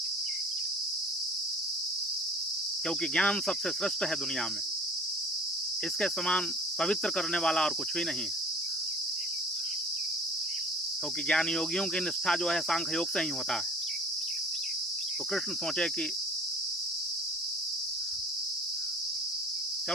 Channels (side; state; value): both; normal; correlation 0.48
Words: क्योंकि ज्ञान सबसे श्रेष्ठ है दुनिया में, इसके समान पवित्र करने वाला और कुछ भी नहीं है। क्योंकि ज्ञान योगियों की निष्ठा जो है सांख्य योग से ही होता है। तो कृष्ण सोचे कि